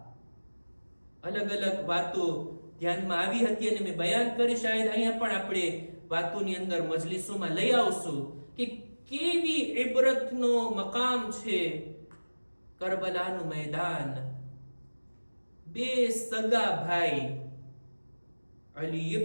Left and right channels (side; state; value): both; inverted; correlation -1.00